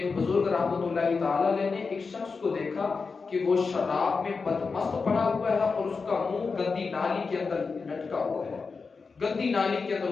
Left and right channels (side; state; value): right; quieter; 4.7 dB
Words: بزرگ رحمت اللہ تعالیٰ علیہ نے ایک شخص کو دیکھا کہ وہ شراب میں بدمست پڑا ہوا ہے اور اس کا منہ گندی نالی کے اندر لٹکا ہوا ہے، گندی نالی کے